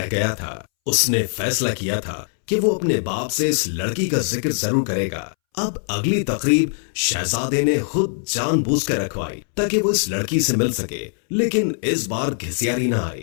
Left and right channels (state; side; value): silent; right; 64 dB below the other